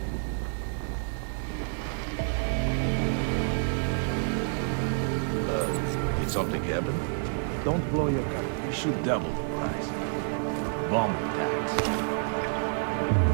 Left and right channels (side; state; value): left; silent; 59 dB below the other